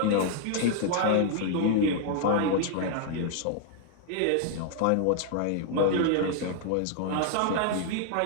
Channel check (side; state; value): both; different; correlation -0.01